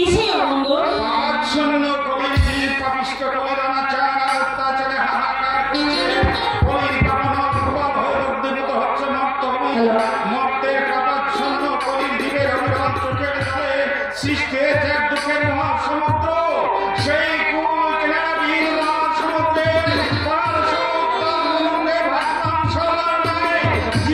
অমঙ্গল? পাচ্ছন্ন কলির পাপিষ্ট কলির অনাচার অত্যাচারে হাহাকার কলির পাবন প্রভাব হয়ে উদ্দীপিত হচ্ছে মর্তের কাপাচ্ছন্ন কলির জীবের অবিরল চোখের জলে সৃষ্টি হয়েছে এক দুঃখের মহাসমুদ্র। সেই কুল কিনারা বীর সমুদ্রের পার সমুদ্রে ভাসমান সরলার নামে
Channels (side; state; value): left; noise; hum, 24 dB below the sound